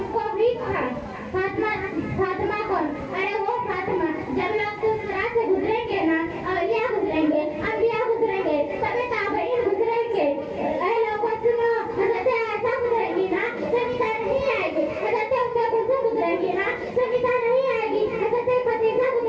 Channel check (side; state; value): both; identical; correlation 1.00